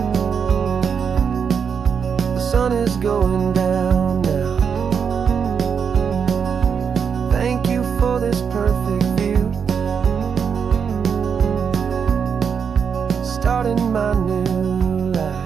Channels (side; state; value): left; quieter; 6.7 dB